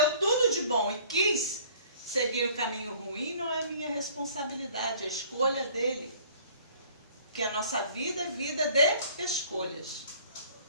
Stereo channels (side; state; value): both; inverted; correlation -0.53